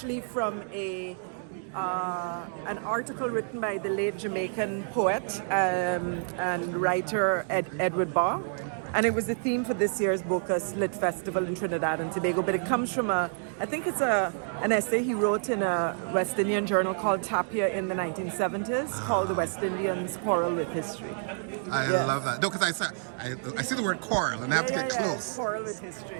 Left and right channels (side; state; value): left; silent; digital silence